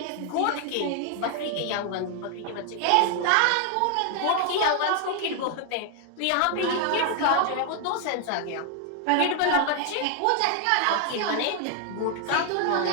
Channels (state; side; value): different; both; correlation 0.00